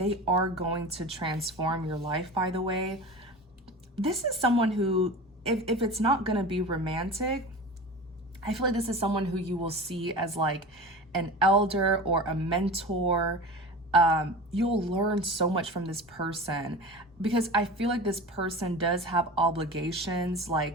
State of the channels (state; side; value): normal; both; correlation 0.32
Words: are going to transform your life, by the way. This is someone who, if it's not going to be romantic, I feel like this is someone who you will see as like an elder or a mentor. You'll learn so much from this person, because I feel like this person does have obligations,